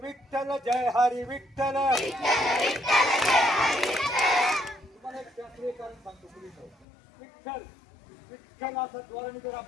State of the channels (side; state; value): right; drops out; at 6.9 s